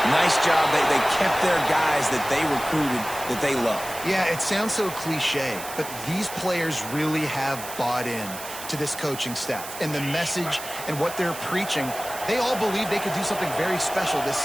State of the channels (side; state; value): right; noise; hiss, 11 dB below the sound